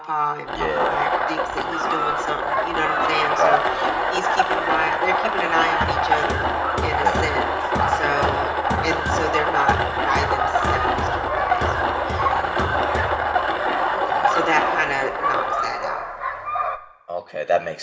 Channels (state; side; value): identical; both; correlation 1.00